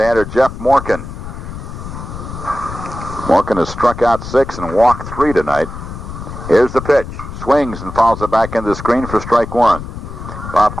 Jeff Morgan. Morgan has struck out 6 and walked 3 tonight. Here's the pitch. Swings and fouls it back into the screen for strike 1. Bob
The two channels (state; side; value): noise; left; rumble, 10 dB below the sound